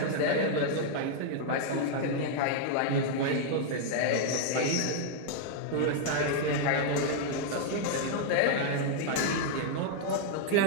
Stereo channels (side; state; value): both; different; correlation 0.00